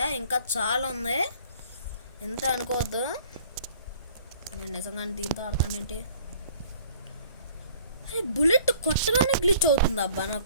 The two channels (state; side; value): inverted; both; correlation -0.54